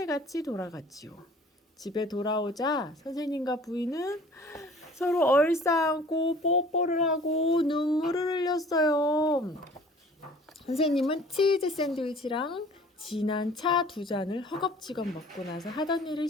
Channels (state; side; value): normal; both; correlation 0.49